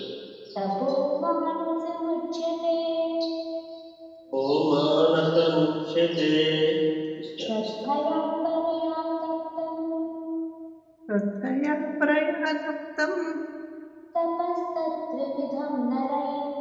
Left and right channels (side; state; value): both; identical; correlation 1.00